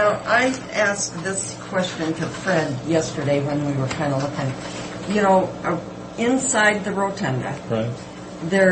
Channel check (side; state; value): both; identical; correlation 1.00